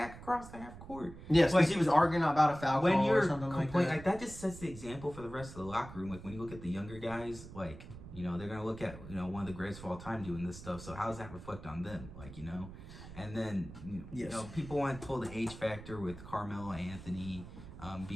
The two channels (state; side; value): noise; right; rumble, 14 dB below the sound